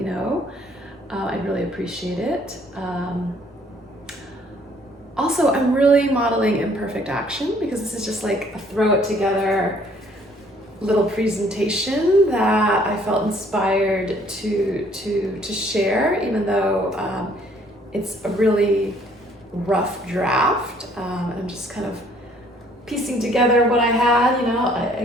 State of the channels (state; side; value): normal; both; correlation 0.61